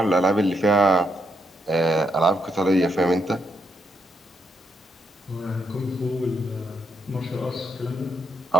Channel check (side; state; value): both; normal; correlation 0.78